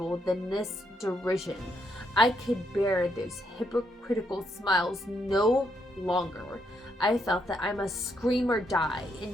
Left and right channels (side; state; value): both; normal; correlation 0.77